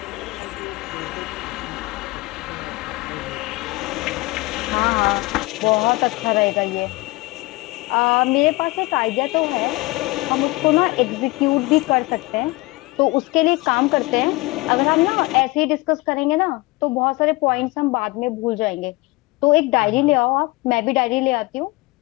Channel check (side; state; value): right; quieter; 22.8 dB